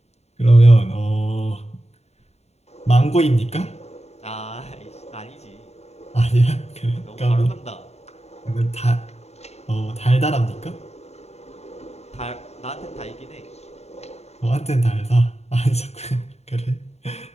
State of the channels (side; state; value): right; late; 0.31 ms